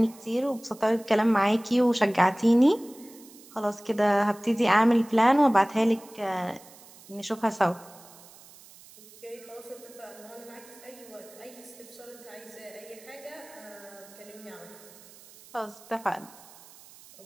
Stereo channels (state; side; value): noise; right; hiss, 22 dB below the sound